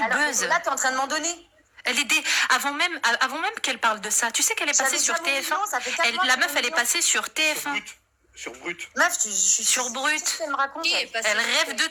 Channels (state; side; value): identical; both; correlation 1.00